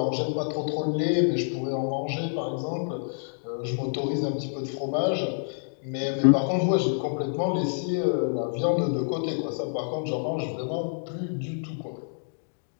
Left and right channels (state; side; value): silent; right; digital silence